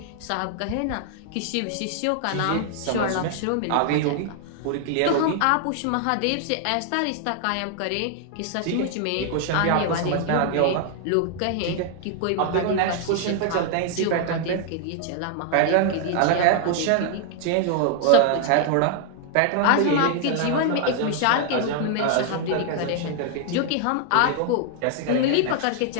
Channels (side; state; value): both; different; correlation 0.00